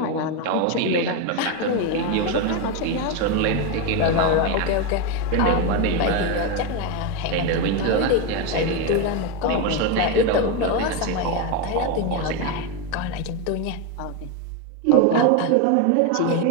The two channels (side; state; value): both; different; correlation 0.04